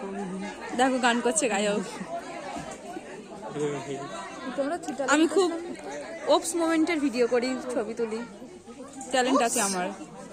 দেখো গান করছে গায়ক। আমি খুব ওপস মোমেন্টের ভিডিও করি, ছবি তুলি, ট্যালেন্ট আছে আমার।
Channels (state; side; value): identical; both; correlation 1.00